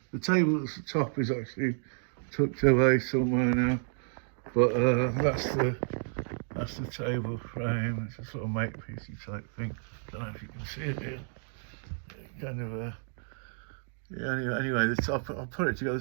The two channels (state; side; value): silent; left; 57 dB below the other